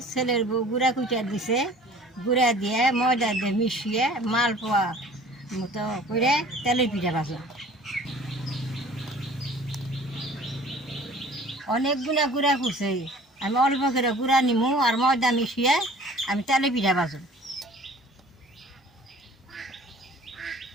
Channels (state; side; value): normal; both; correlation 0.48